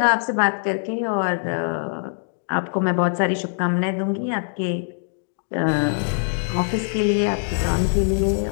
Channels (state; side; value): silent; right; digital silence